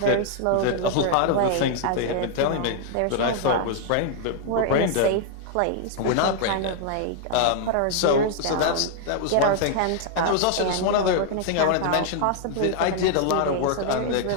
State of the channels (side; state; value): both; different; correlation -0.01